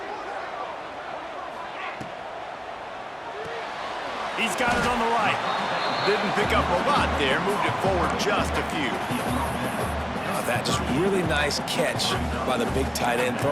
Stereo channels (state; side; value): identical; both; correlation 1.00